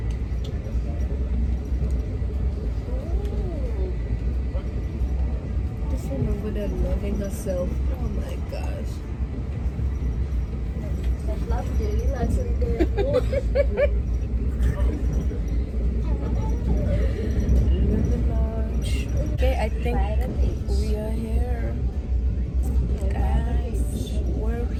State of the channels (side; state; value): both; identical; correlation 1.00